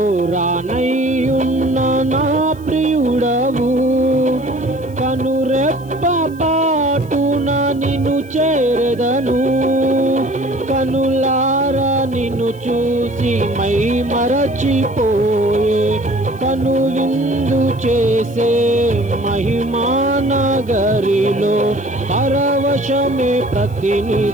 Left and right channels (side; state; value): left; noise; hiss, 27 dB below the sound